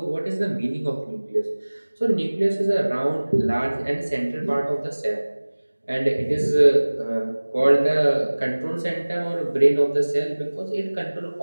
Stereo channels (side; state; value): both; inverted; correlation -1.00